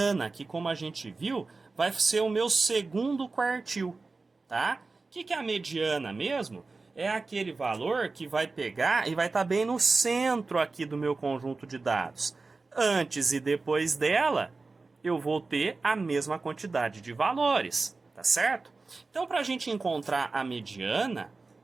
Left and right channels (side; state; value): left; quieter; 3.8 dB